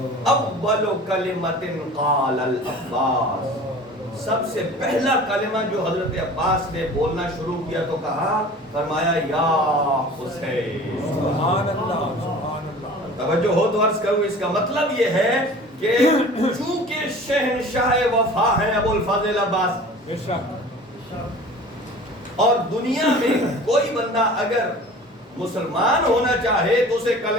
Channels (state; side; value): normal; both; correlation 0.42